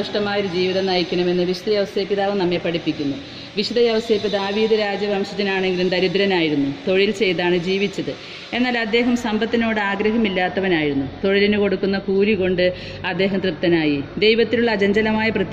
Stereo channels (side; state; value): both; identical; correlation 1.00